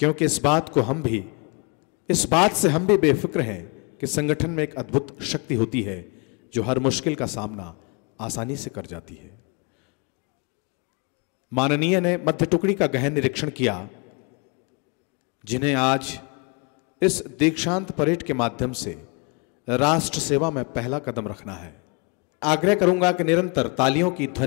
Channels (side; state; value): right; quieter; 32.6 dB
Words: इस बात से हम भी बेफिक्र हैं कि संगठन में एक अद्भुत शक्ति होती है जो हर मुश्किल का सामना आसानी से कर जाती है। माननीय ने मध्य टुकड़ी का गहन निरीक्षण किया, जिन्हें आज इस दीक्षांत परेड के माध्यम से राष्ट्र सेवा में पहला कदम रखना है। आग्रह करूंगा कि निरंतर तालियों की